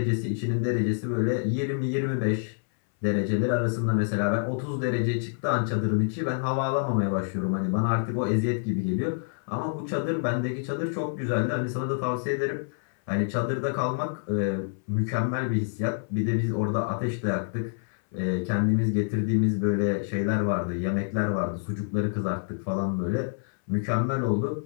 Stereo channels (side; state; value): right; silent; 60 dB below the other